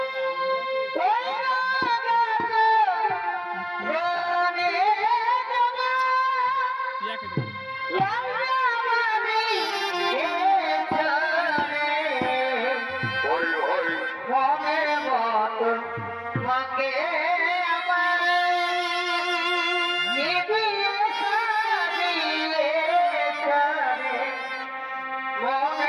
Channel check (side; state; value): both; identical; correlation 1.00